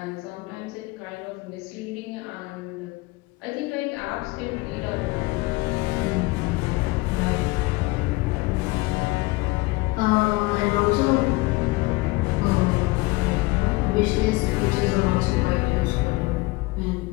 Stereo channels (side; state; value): right; quieter; 22.5 dB